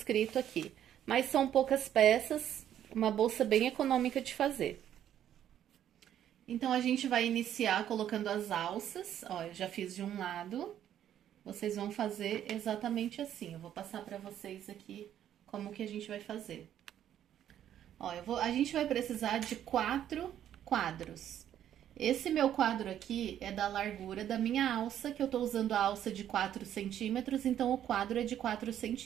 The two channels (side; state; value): left; quieter; 10.7 dB